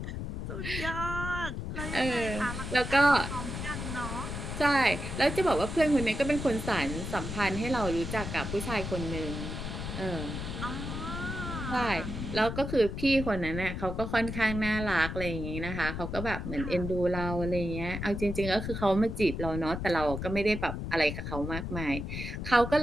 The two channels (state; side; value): noise; left; rumble, 5 dB below the sound